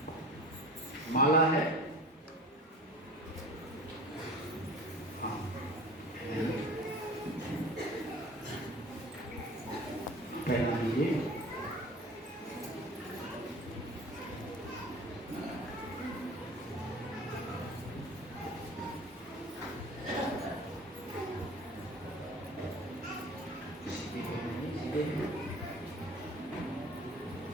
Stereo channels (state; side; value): normal; both; correlation 0.41